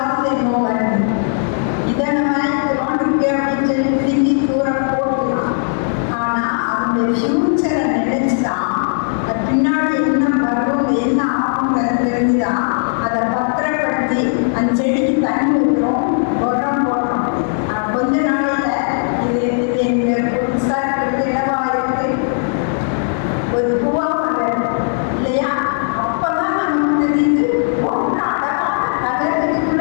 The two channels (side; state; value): right; silent; 60 dB below the other